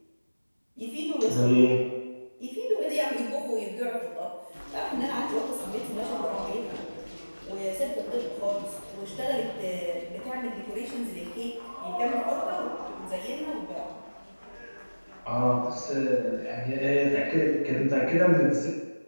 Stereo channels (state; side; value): inverted; both; correlation -1.00